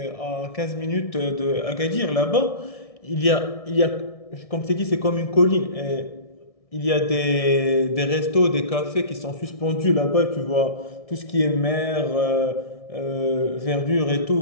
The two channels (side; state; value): right; late; 1.6 ms